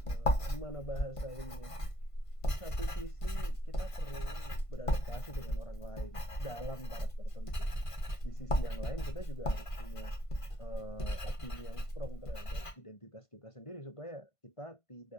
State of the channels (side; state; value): right; late; 1.5 ms